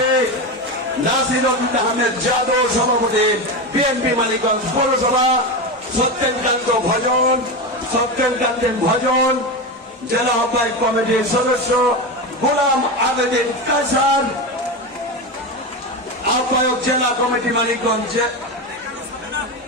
নাসির আহমেদ যাদব সভাপতি বিএনপি মানিকগঞ্জ পৌরসভা, সত্যেন ভজন জেলা আহ্বায়ক কমিটির সদস্য গোলাম আবেদিন কাসার, আহ্বায়ক জেলা কমিটি মানিকগঞ্জ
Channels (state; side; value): normal; both; correlation 0.18